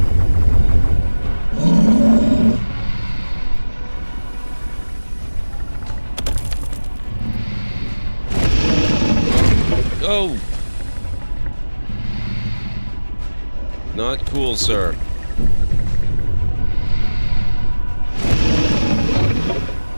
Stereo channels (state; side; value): inverted; both; correlation -1.00